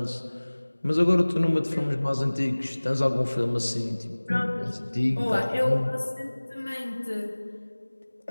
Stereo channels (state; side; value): inverted; both; correlation -1.00